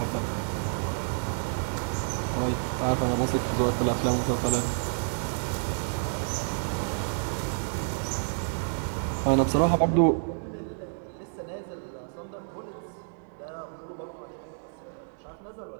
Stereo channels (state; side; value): silent; left; digital silence